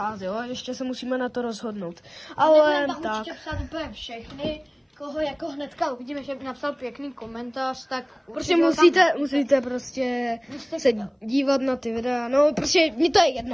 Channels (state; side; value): identical; both; correlation 1.00